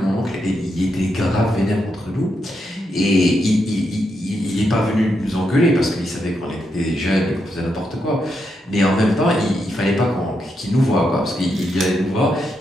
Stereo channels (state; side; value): normal; both; correlation 0.82